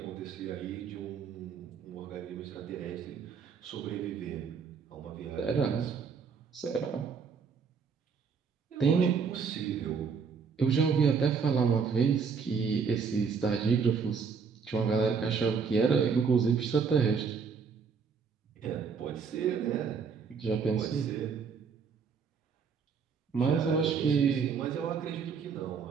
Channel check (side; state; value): left; quieter; 5.9 dB